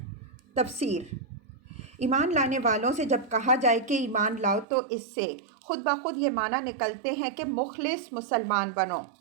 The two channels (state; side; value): drops out; left; at 4.7 s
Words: تفسیر۔ ایمان لانے والوں سے جب کہا جائے کہ ایمان لاؤ تو اس سے خود بخود یہ معنی نکلتے ہیں کہ مخلص مسلمان بنو،